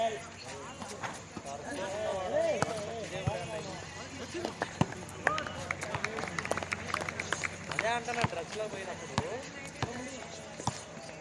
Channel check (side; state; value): both; identical; correlation 1.00